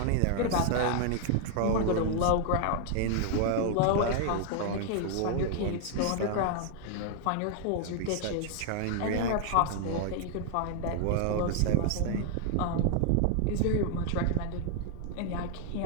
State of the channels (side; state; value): both; different; correlation 0.00